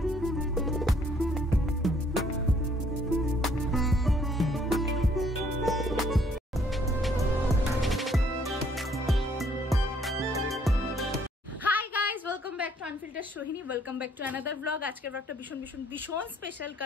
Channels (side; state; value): both; normal; correlation 0.65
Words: Sohini welcome back to another blog. আজকের ব্লগটা ভীষণ ভীষণ ভীষণ স্পেশাল,